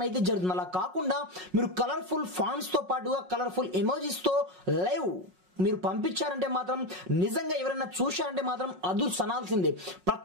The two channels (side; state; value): left; late; 5.5 ms